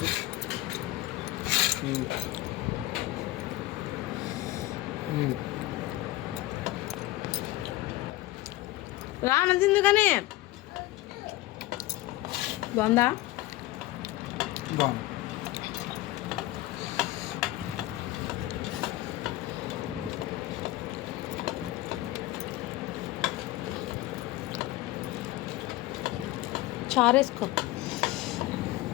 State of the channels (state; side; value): quieter; right; 17.4 dB